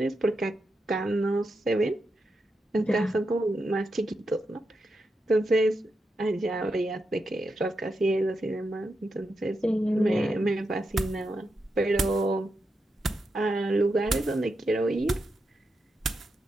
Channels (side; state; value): both; normal; correlation 0.86